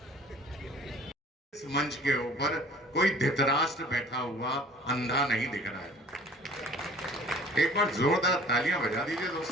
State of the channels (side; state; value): both; normal; correlation 0.49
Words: इस मंच के ऊपर कोई धृतराष्ट्र बैठा हुआ अंधा नहीं दिख रहा है। एक बार जोरदार तालियां बजा दीजिए